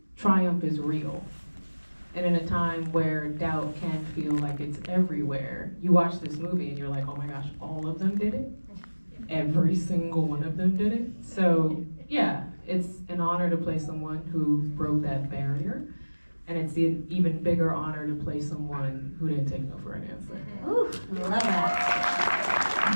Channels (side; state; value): both; inverted; correlation -1.00